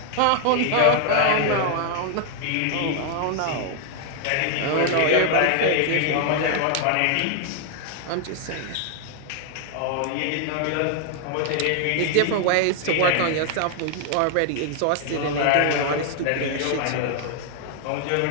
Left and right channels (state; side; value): different; both; correlation 0.00